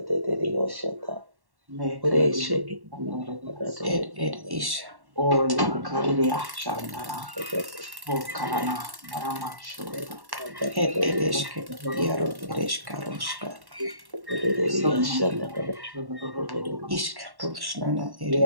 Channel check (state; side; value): late; left; 1.1 ms